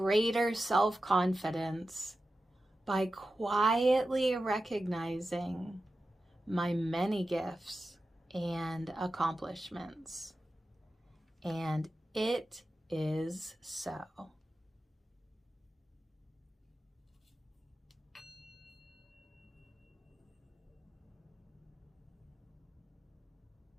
self-confidence by quietly recognizing my many gifts and accomplishments. And it is so.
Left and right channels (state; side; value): normal; both; correlation 0.92